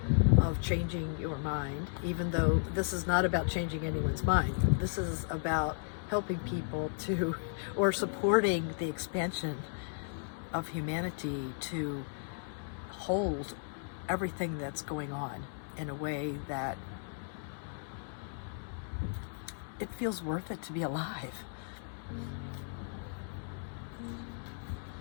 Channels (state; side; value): silent; right; 54 dB below the other